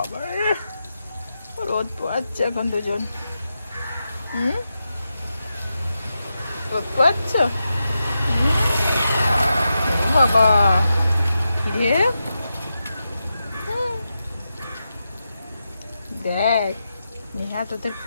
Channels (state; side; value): inverted; both; correlation -0.88